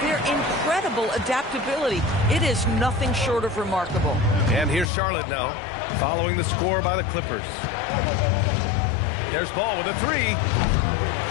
their incredible adaptability. It is nothing short of remarkable. And here's Charlotte now, following the score by the Clippers. There's Ball with a 3.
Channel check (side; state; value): right; drops out; at 4.9 s